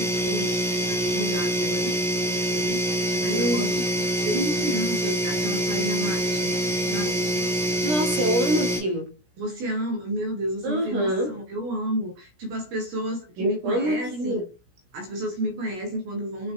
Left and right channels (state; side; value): late; left; 17 ms